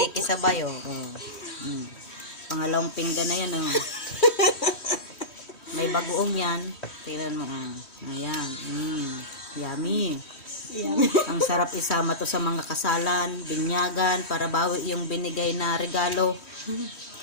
oh. Pangalawang pinggan na yan, oh. May bagoong yan. Tingnan mo, ah. Ayan. Yummy. Ang sarap isama to sa mga kasalan, binyagan, para bawi yung binigay na regalo.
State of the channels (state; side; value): late; right; 3.1 ms